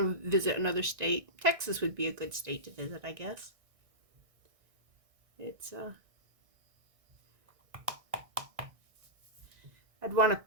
visit another state, Texas would be a good state to visit, I guess. It's, I'd want to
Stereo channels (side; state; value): left; late; 1.6 ms